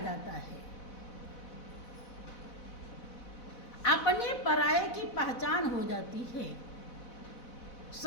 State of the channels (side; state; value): right; late; 4.0 ms